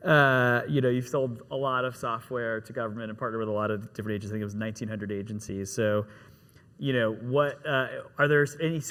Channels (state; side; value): identical; both; correlation 1.00